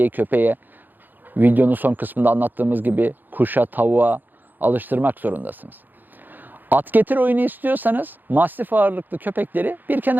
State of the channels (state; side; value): late; left; 0.088 ms